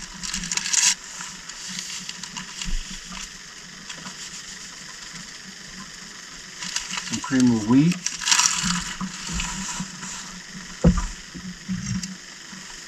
Some cream of wheat.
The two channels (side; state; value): both; identical; correlation 1.00